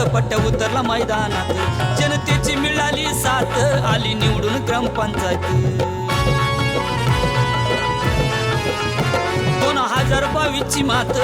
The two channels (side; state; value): both; identical; correlation 1.00